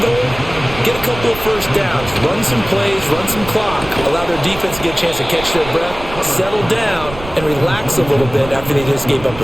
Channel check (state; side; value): noise; right; rumble, 13 dB below the sound